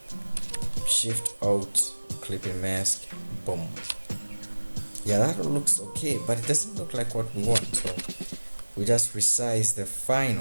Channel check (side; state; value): both; inverted; correlation -1.00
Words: Shift Alt, clipping mask, boom. Yeah, that looks okay, but it doesn't look like what we want. So we just resize the